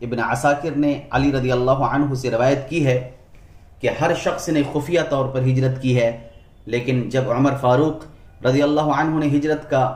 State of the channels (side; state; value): both; identical; correlation 1.00